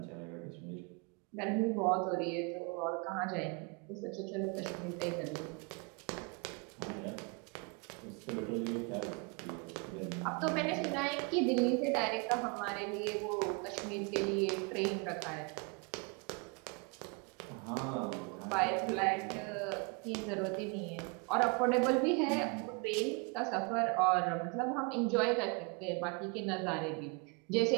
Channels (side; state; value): left; quieter; 32.4 dB